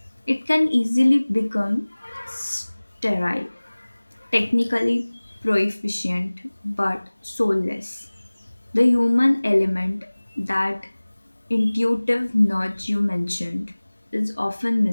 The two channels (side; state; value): both; inverted; correlation -1.00